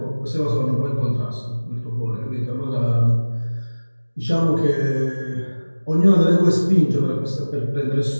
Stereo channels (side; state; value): both; inverted; correlation -1.00